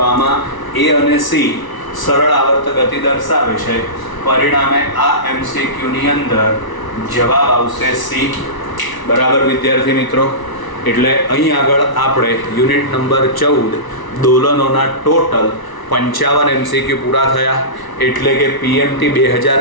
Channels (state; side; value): late; right; 1.0 ms